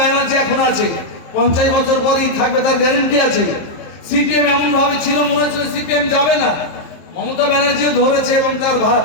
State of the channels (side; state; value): right; late; 23 ms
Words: এখন আছে, 50 বছর পরেই থাকবে তার গ্যারেন্টি আছে। সিপিএম এমন ভাবে ছিল, মনে হচ্ছিল সিপিএম যাবে না। মমতা ব্যানার্জিও ধরেছে এবং তার